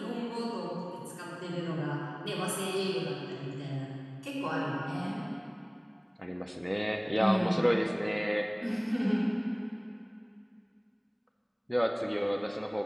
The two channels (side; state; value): both; identical; correlation 1.00